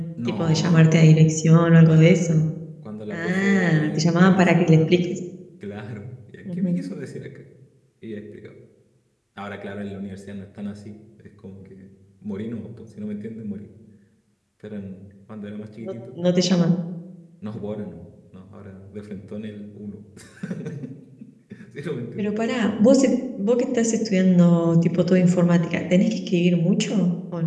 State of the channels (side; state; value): both; identical; correlation 1.00